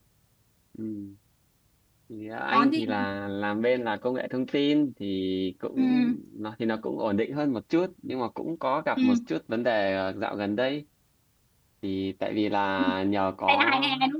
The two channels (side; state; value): both; identical; correlation 1.00